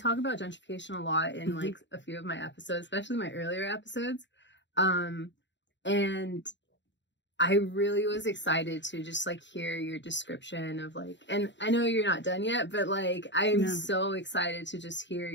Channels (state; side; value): late; right; 0.53 ms